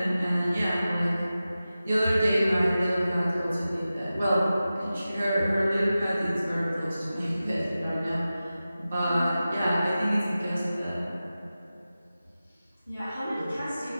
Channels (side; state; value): both; inverted; correlation -0.95